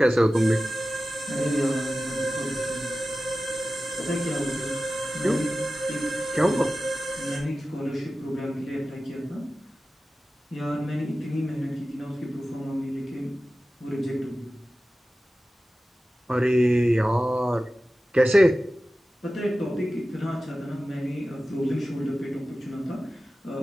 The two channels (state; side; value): normal; both; correlation 0.95